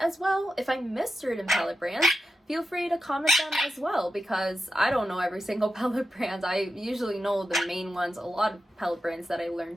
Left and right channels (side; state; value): both; normal; correlation 0.89